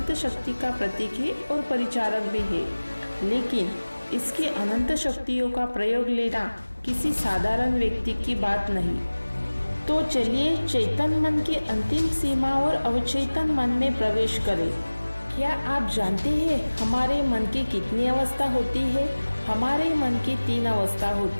शक्ति का प्रतीक है और परिचारक भी है, लेकिन इसकी अनंत शक्तियों का प्रयोग लेना किसी साधारण व्यक्ति की बात नहीं। तो चलिए चेतन मन की अंतिम सीमा और अवचेतन मन में प्रवेश करें। क्या आप जानते हैं हमारे मन की कितनी अवस्था होती है? हमारे मन की 3 अवस्था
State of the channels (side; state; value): both; inverted; correlation -1.00